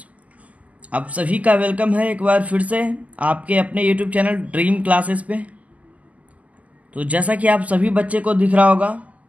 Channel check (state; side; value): late; left; 0.073 ms